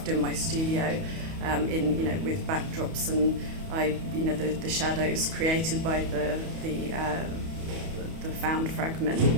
in my studio, with backdrops, and the shadows created by the found fragment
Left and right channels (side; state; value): left; late; 31 ms